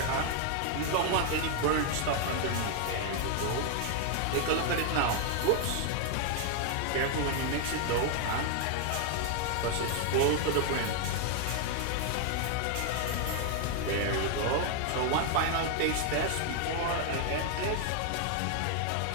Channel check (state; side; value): different; both; correlation 0.00